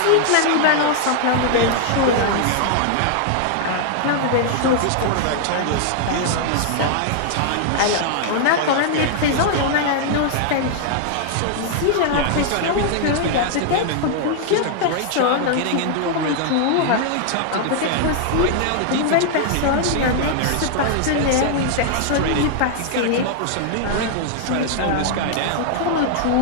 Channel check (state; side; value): different; both; correlation -0.01